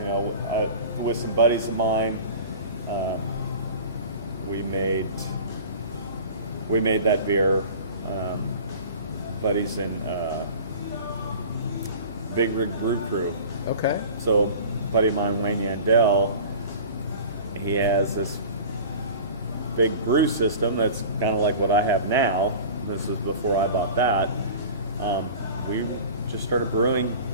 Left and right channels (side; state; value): both; inverted; correlation -0.39